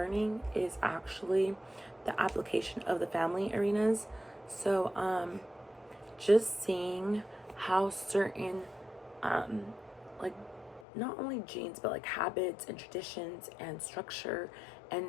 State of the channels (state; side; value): drops out; right; at 10.9 s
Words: is actually the application of the family arenas. So just seeing how certain like not only genes but like habits and traditions and structure and